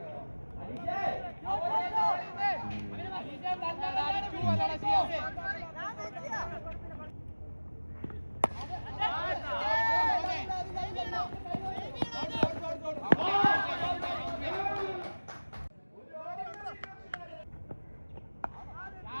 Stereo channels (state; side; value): inverted; both; correlation -1.00